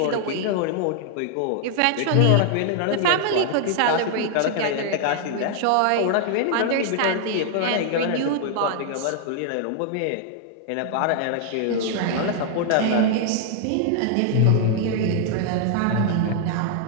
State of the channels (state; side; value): different; both; correlation 0.00